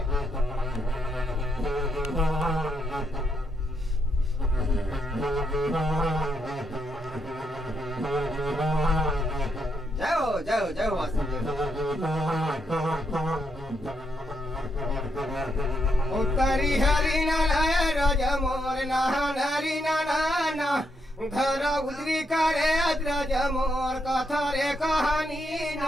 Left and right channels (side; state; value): both; normal; correlation 0.79